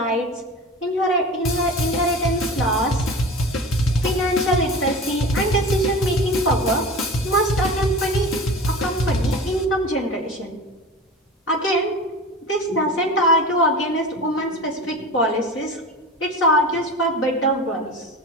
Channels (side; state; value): both; normal; correlation 0.33